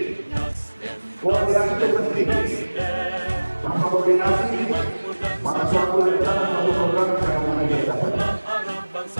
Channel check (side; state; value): both; inverted; correlation -1.00